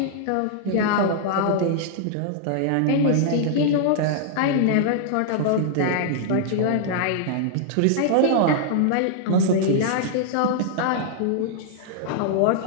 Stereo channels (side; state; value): both; different; correlation -0.01